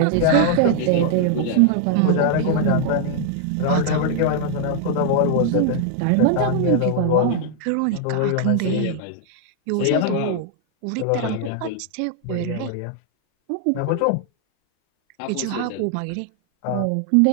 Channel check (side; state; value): both; different; correlation 0.00